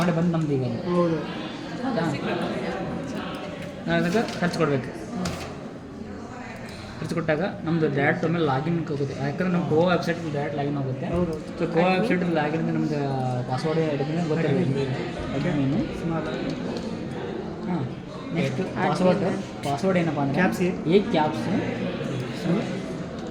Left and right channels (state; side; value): identical; both; correlation 1.00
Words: ಬಂದು ನಮ್ದು ಈಗ ಹೌದು. ಹೌದಾ? ನಾವು ಅದಕ್ಕೆ ಖರ್ಚು ಕೊಡಬೇಕು. ಖರ್ಚು ಕೊಟ್ಟಾಗ ನಮ್ಮದು ಡೈರೆಕ್ಟ್ ಒಮ್ಮೆ ಲಾಗಿನ್ ಹೋಗುತ್ತೆ. ಯಾಕಂದ್ರೆ ನಮ್ಮ ಗೋವಾ ವೆಬ್ಸೈಟ್ ಡೈರೆಕ್ಟ್ ಲಾಗಿನ್ ಹೋಗುತ್ತೆ. ಸೊ ಗೋವಾ ವೆಬ್ಸೈಟ್ ಲಾಗಿನ್ ನಮ್ದು ಪಾಸ್ವರ್ಡ್ ಹಿಡಿದ್ರೆ ಗೊತ್ತಿರಬೇಕು. ಅಡ್ಮಿನು ಹಾಂ ನೆಕ್ಸ್ಟ್ ಪಾಸ್ವರ್ಡ್ ಏನಪ್ಪ ಅಂದರೆ caps